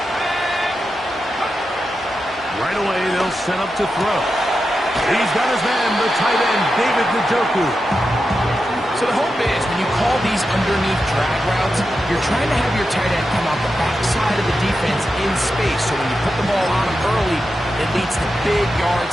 Right away, they'll set up to throw. He's got his man, the tight end, David Njoku. So the hope is when you call these underneath drag routes, you're trying to have your tight end come out the backside of the defense in space. So when you put the ball on him early, it leads to big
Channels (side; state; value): both; normal; correlation 0.89